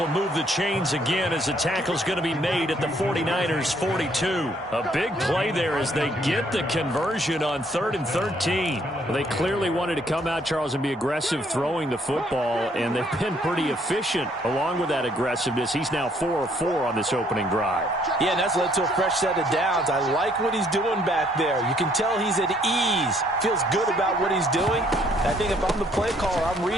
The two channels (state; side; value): normal; both; correlation 0.66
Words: move the chains again as the tackle's going to be made at the 49ers 42. A big play there as they get the conversion on 3rd and 13. Well, they clearly wanted to come out, Charles, and be aggressive throwing the football, and they've been pretty efficient along with that aggressiveness. He's now 4 of 4 on this opening drive. Yeah, and that's led to a fresh set of downs. I like what he's doing back there. You can tell he's at ease. Feels good about what he's doing. I think if I'm the play caller, I'm